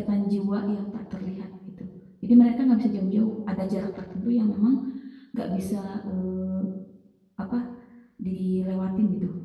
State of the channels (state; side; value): identical; both; correlation 1.00